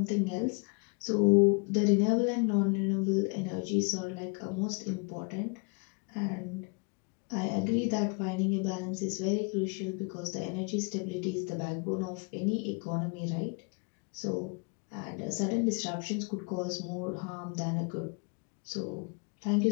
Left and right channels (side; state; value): right; quieter; 36.0 dB